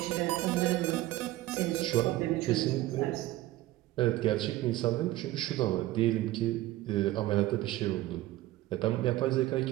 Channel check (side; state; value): left; quieter; 16.3 dB